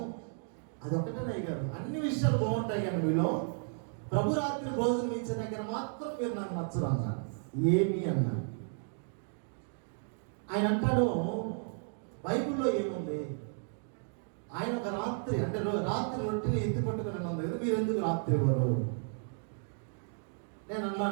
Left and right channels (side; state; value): left; silent; 55 dB below the other